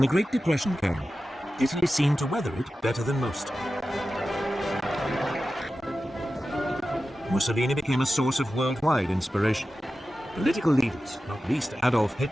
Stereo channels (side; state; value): both; normal; correlation 0.94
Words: Great Depression came, Italy seemed to weather it better than most. Mussolini became a source of worldwide inspiration. Political leaders, not least Adolf